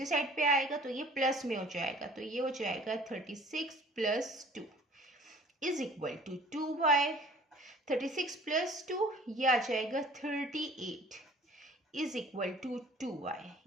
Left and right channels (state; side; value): normal; both; correlation 0.51